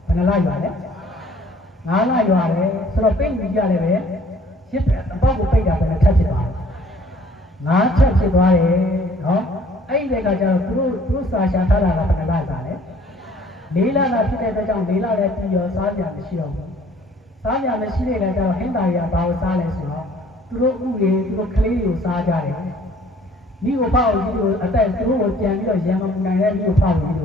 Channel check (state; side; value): normal; both; correlation 0.57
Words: ဘယ်နှလရွာလဲ9လရွာတယ်ဆိုတော့ပိတ်ပြီးကြတယ်ပဲရစ်အပေါက်ကိုပိတ်တာပဲထပ်ဖြစ်သွားတယ်9ချက်ဖြစ်သွားတယ်နော်အဲ့ဒီကကျတော့သူတို့စာရှာထားတာကဘယ်နှလစားလဲလေးလတာဖြစ်တဲ့အတွက်ကြောင့်လေးလလည်းပြီးရောစားကြမရှိတော့ဘူးစားကြမရှိတဲ့အခါကျတော့ဟင်းသားတွေကဘာကိုစားလဲဆိုတော့သူတို့ဥတွေသူတို့ကလေးတွေကိုစားကြတယ်မိကိုဖောက်ပြီးတော့အသက်သူတို့ကိုပြန်ပြီးတော့ရံမပူနိုင်တဲ့မိကိုဖောက်ပြီးတ